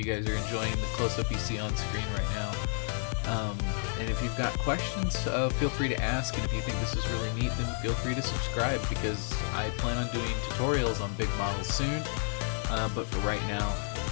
guys are enjoying the close-up you see on screen right now. And if you've got questions, feel free to ask, and if you think this is really neat, then feel free to subscribe, because I plan on doing tutorials on big models soon, but for right now,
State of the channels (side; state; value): right; silent; 57 dB below the other